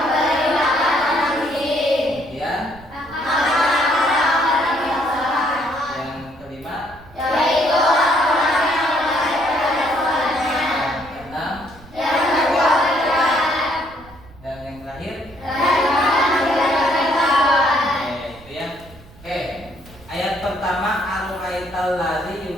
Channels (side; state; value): right; noise; rumble, 22 dB below the sound